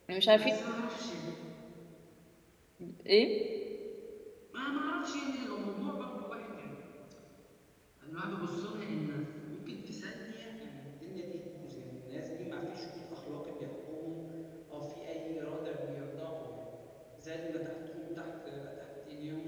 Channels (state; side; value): identical; both; correlation 1.00